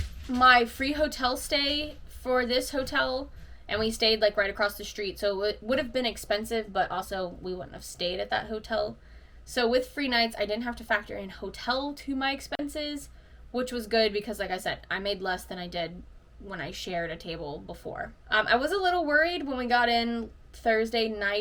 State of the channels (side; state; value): both; identical; correlation 1.00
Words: my free hotel stay for this hotel. And we stayed like right across the street, so it would have been expensive, but also we wouldn't have stayed at that hotel. So with free nights, I didn't have to factor in hotel to my expenses, which was good because, like I said, I made less than I did when I shared a table before. I was a little worried when we got in Thursday